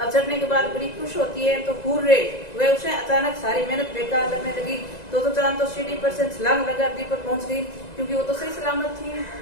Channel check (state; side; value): late; right; 1.9 ms